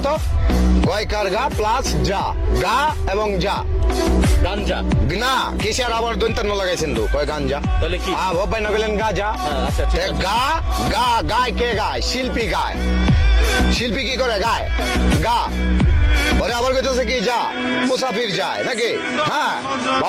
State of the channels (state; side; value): identical; both; correlation 1.00